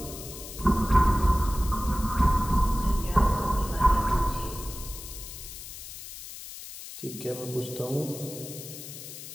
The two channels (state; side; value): noise; left; hiss, 12 dB below the sound